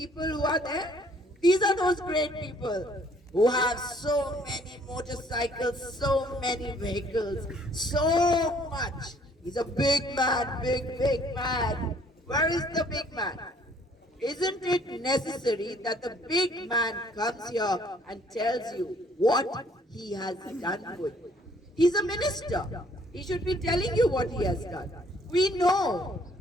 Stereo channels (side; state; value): both; normal; correlation 0.61